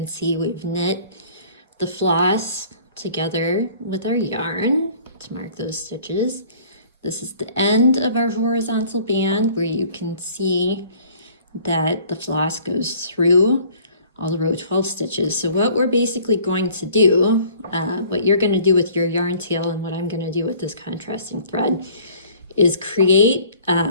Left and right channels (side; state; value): both; inverted; correlation -0.52